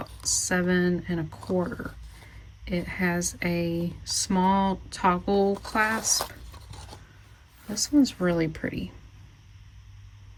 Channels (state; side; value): identical; both; correlation 1.00